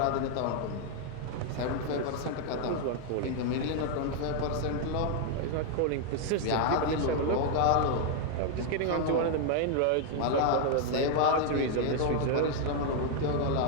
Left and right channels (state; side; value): different; both; correlation 0.00